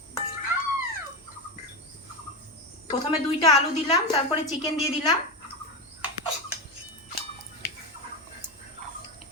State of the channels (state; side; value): normal; both; correlation 0.16